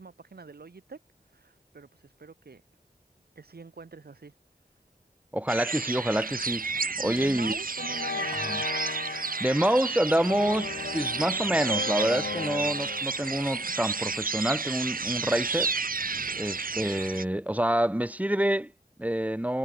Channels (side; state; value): both; normal; correlation 0.68